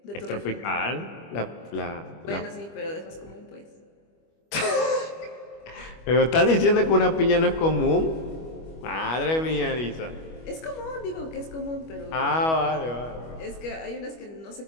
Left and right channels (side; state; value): right; late; 25 ms